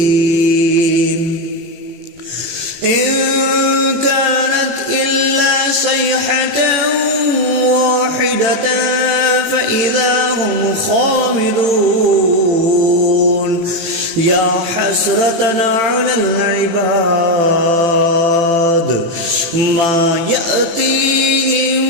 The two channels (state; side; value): late; left; 18 ms